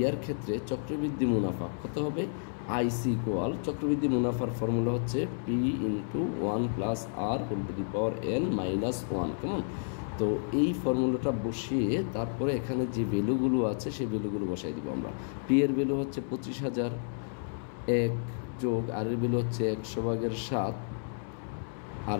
ক্ষেত্রে চক্রবৃদ্ধি মুনাফা কত হবে, আইসি ইকুয়াল চক্রবৃদ্ধি মুনাফার ফর্মুলা হচ্ছে P into 1 plus R whole to the power N minus 1, কেমন। তো এই ফর্মুলাটা বসিয়ে তারপরে এখানে যে ভ্যালুগুলো আছে সেই ভ্যালুগুলো বসাই দিব আমরা। পি এর ভ্যালু হচ্ছে 25,000, 1 যোগ আর এর ভ্যালু হচ্ছে 100/7, আর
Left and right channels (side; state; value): right; silent; 57 dB below the other